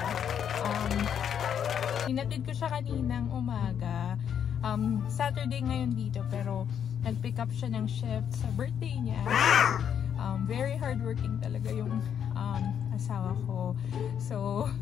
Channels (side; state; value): right; quieter; 8.5 dB